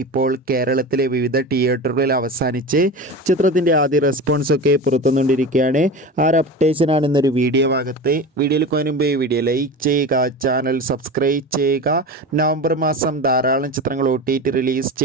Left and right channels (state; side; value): normal; both; correlation 0.29